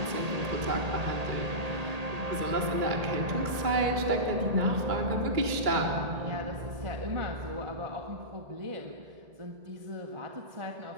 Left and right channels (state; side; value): late; left; 2.2 ms